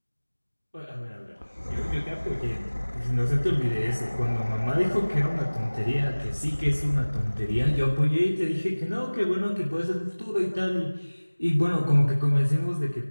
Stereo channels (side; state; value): both; inverted; correlation -1.00